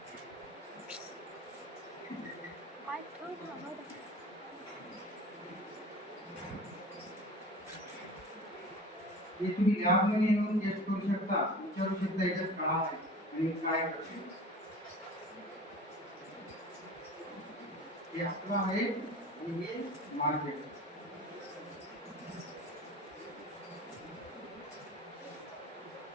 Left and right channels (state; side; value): normal; both; correlation 0.39